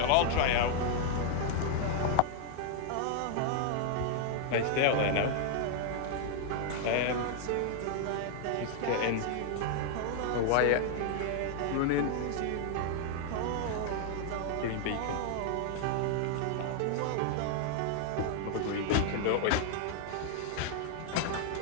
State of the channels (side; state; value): both; different; correlation 0.00